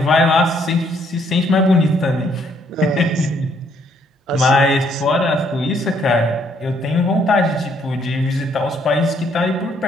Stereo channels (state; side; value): normal; both; correlation 0.68